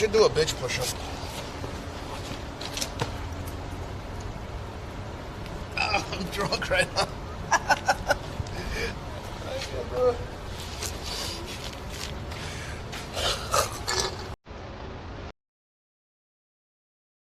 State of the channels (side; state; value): both; identical; correlation 1.00